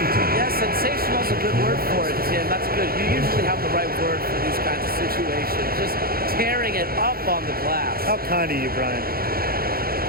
Yeah, sensational is a good word for it, Tim. That's good. You usually have the right word for these kinds of situations. Just tearing it up on the glass. How kind of you, Brian.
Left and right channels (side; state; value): left; late; 0.44 ms